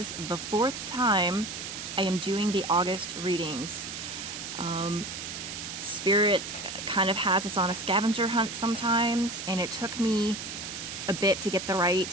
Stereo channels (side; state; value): right; noise; hiss, 7 dB below the sound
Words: the 4th time I am doing the August readings. Spirit kind of has us on a scavenger hunt sometimes, and it took me a bit to get the